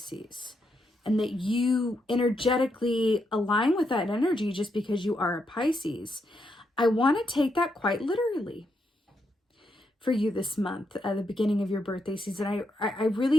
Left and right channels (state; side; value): normal; both; correlation 0.81